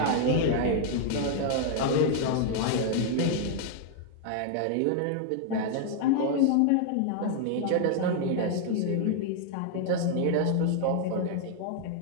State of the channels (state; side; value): different; both; correlation 0.00